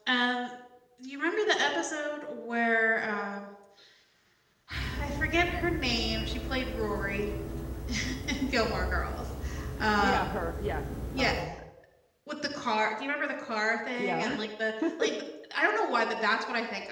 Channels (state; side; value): identical; both; correlation 1.00